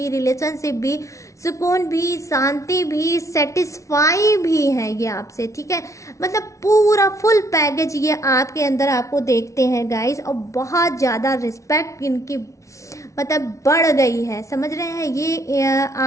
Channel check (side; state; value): right; late; 0.15 ms